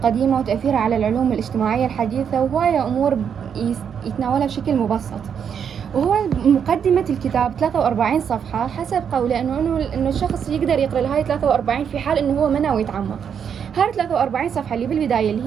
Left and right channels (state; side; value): quieter; left; 7.7 dB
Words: وتأثيرها على العلوم الاجتماعية الحديثة، وهواية أمور يتناولها بشكل مبسط. وهو مقدمة الكتاب 43 صفحة حسب قوله إنه الشخص يقدر يقرأ هاي 43 في حال إنه هو ما ناوي يتعمق. هاي 43 صفحة اللي بالبداية